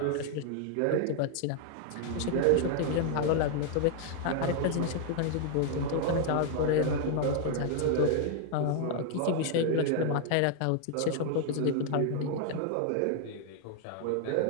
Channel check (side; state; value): both; different; correlation 0.00